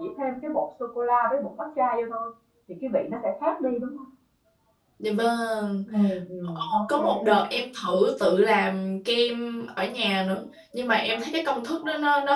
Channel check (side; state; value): both; identical; correlation 1.00